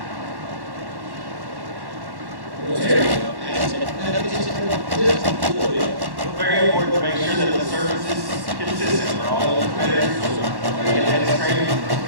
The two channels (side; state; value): left; late; 1.1 ms